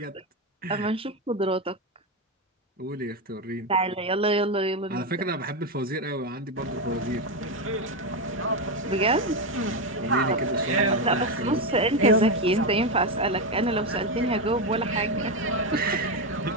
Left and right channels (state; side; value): normal; both; correlation 0.10